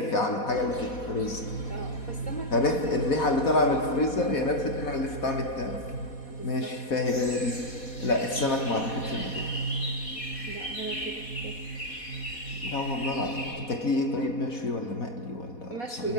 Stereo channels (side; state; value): right; late; 4.1 ms